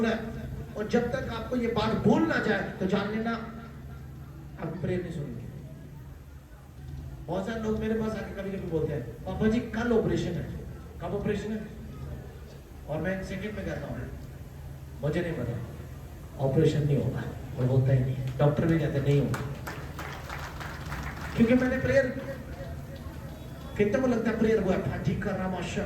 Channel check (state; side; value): identical; both; correlation 1.00